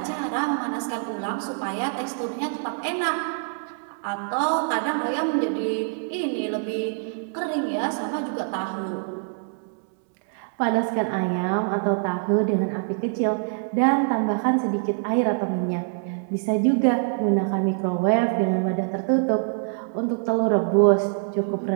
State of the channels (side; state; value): left; silent; 62 dB below the other